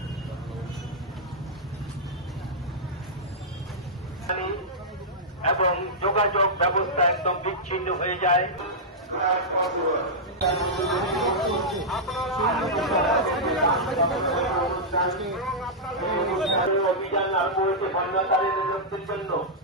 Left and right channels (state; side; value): normal; both; correlation -0.10